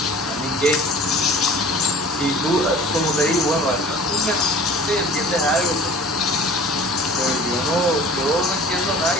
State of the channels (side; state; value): both; normal; correlation 0.44